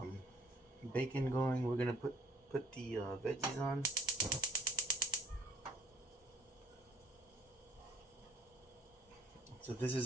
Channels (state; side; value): normal; both; correlation 0.59